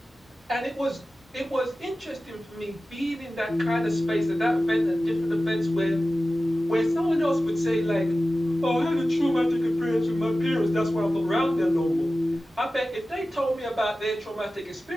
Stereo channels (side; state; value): both; normal; correlation 0.95